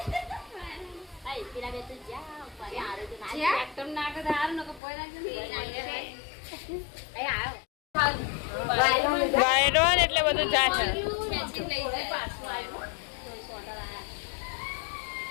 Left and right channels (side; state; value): right; drops out; at 4.8 s